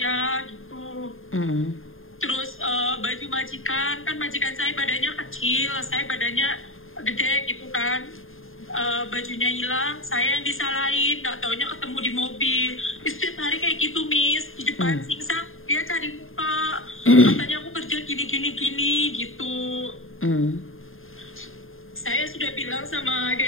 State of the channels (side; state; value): right; late; 0.60 ms